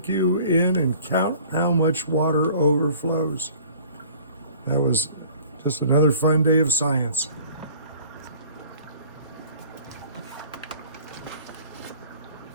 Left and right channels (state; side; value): inverted; both; correlation -0.49